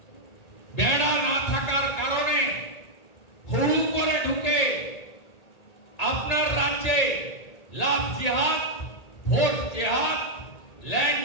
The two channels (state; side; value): late; right; 1.8 ms